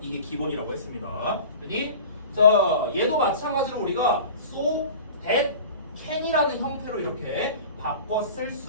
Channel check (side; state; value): both; inverted; correlation -0.39